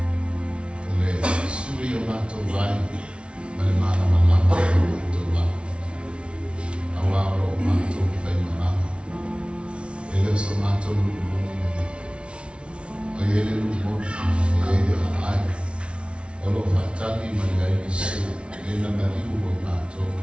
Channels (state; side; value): late; left; 0.059 ms